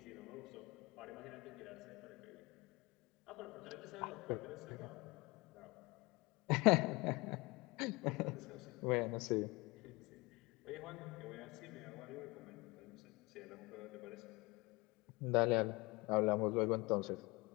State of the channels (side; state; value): right; quieter; 24.7 dB